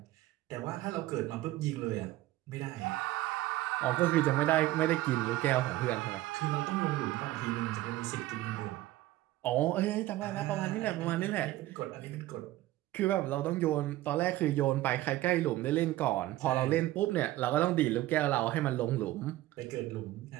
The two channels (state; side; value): quieter; left; 16.2 dB